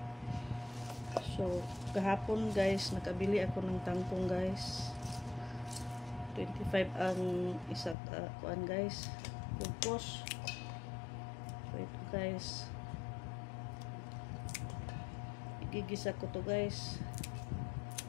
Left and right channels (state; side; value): drops out; right; at 8.0 s